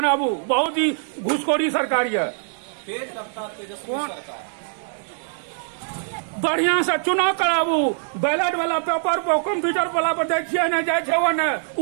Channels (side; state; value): left; silent; digital silence